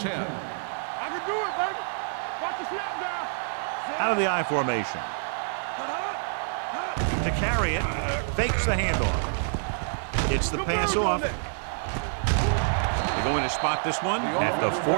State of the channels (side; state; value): left; silent; digital silence